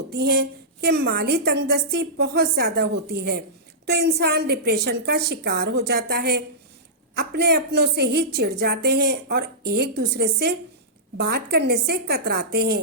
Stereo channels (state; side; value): normal; both; correlation -0.15